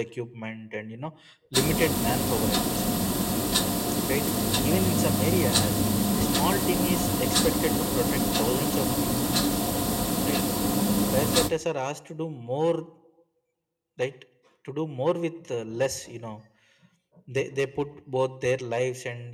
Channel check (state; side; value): identical; both; correlation 1.00